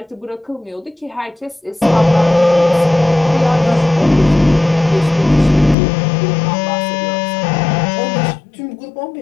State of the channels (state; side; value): drops out; right; at 5.8 s